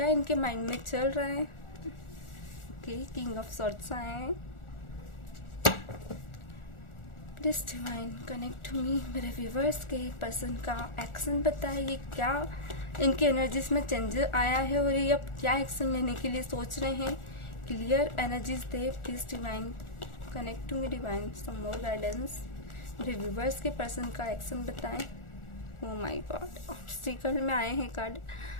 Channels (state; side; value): late; right; 1.4 ms